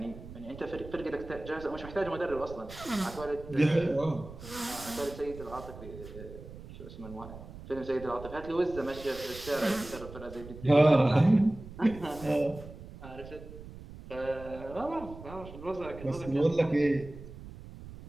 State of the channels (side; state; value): right; noise; rumble, 14 dB below the sound